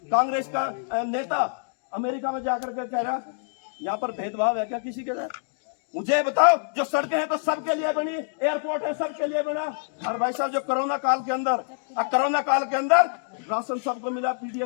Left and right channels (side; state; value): right; silent; digital silence